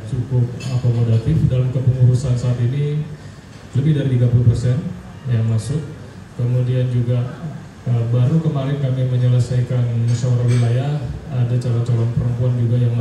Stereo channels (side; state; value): both; identical; correlation 1.00